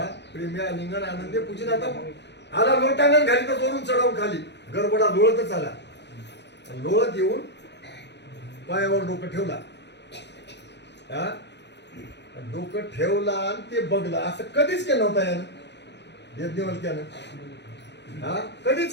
प्रेम्या लिंगण आनंदे पूजित. आता आला लोटांगण घाली तर वरून चढावून खाली गरबडा लोळतच आला. लोळत येऊन पायावर डोकं ठेवला. डोकं ठेवला आणि ते बघला. असं कधीच केलं नव्हता यानं यज्ञवल्क्यानं.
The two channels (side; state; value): right; late; 0.50 ms